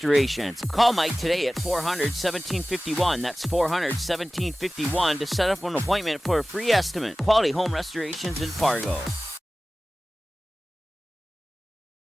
Call Mike today at 400-1751. That's 400-1751 to set up an appointment for a free estimate. Quality Home Restorations in Fargo. All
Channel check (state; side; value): normal; both; correlation 0.97